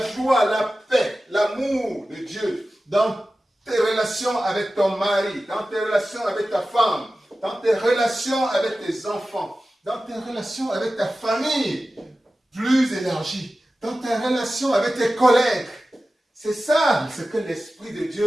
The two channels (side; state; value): both; normal; correlation 0.95